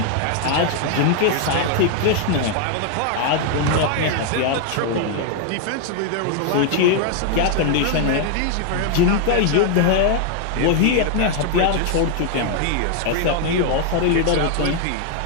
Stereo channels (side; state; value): both; different; correlation 0.00